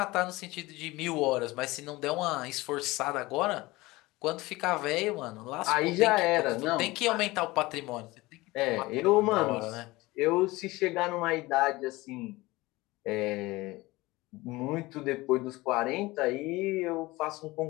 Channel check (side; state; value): right; quieter; 20.6 dB